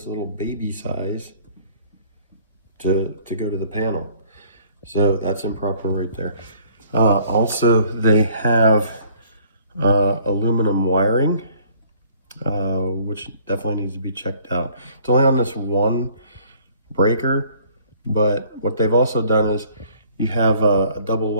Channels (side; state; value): both; inverted; correlation -0.57